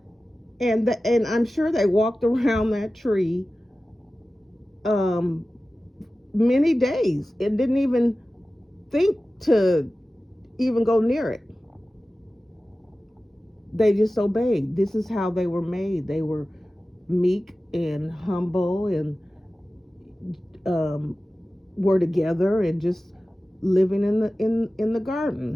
And I'm sure they walked around that tree many days and didn't even think to even go near it. They just obeyed. This is how they were made. They were meek and humble, and were together and just living in the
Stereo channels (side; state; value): both; normal; correlation 0.96